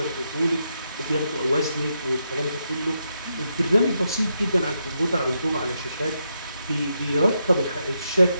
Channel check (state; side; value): inverted; both; correlation -0.82